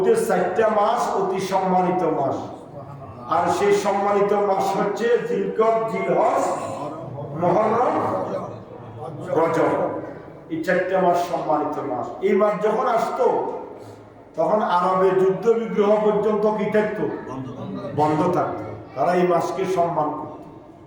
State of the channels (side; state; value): both; identical; correlation 1.00